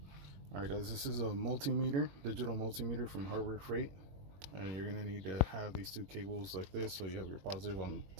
Alright guys, this is a multimeter, digital multimeter from Hardware Freight. And you're going to need to have these 2 cables like this, so you have your positive on the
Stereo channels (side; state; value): left; late; 21 ms